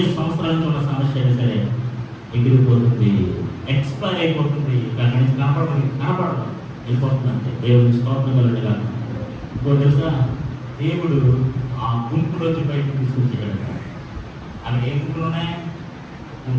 సంవత్సరాల నుంచి ఉన్న సమస్య అయినా సరే ఎగిరిపోతుంది, ఎక్స్పైర్ అయిపోతుంది, దాని నుంచి కనపడదు అయిపోతుంది. అంటే దేవుడికి స్తోత్రం కలుగుగా. ఇంకో తెలుసా, దేవుడు ఆ గుంపులోంచి బయటకు తీసుకొచ్చాడు. అక్కడ ఏ గుంపులు ఉన్నాయి?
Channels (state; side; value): identical; both; correlation 1.00